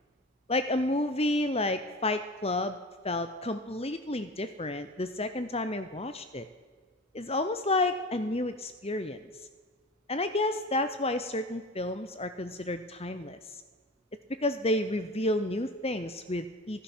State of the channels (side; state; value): both; normal; correlation 0.33